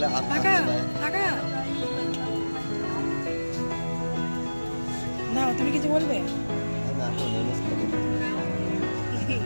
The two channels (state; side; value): inverted; both; correlation -1.00